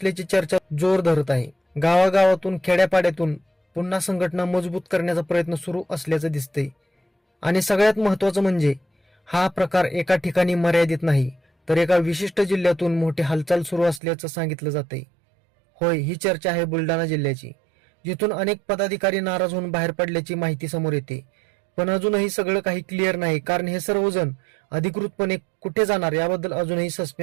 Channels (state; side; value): drops out; left; at 14.0 s